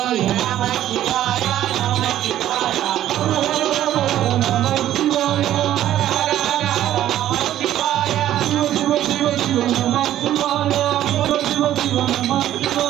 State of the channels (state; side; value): quieter; left; 12.4 dB